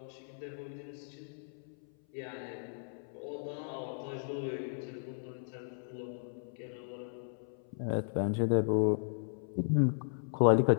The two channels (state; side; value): silent; right; 54 dB below the other